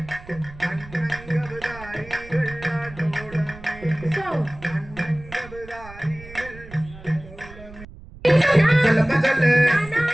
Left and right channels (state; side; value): noise; right; rumble, 17 dB below the sound